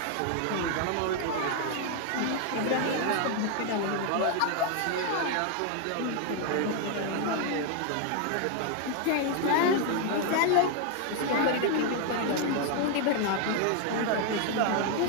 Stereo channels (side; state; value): both; different; correlation 0.01